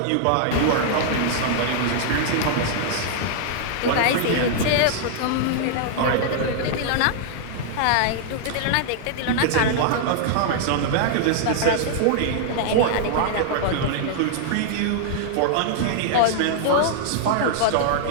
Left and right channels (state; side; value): different; both; correlation -0.01